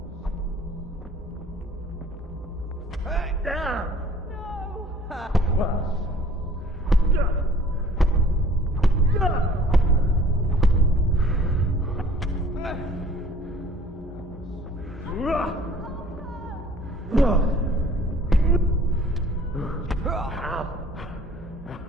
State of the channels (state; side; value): normal; both; correlation 0.53